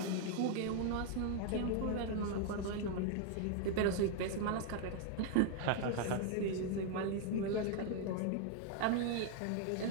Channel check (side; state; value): both; different; correlation 0.00